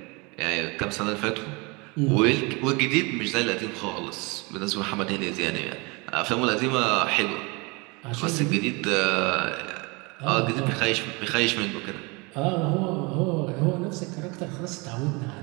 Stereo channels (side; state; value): left; quieter; 27.6 dB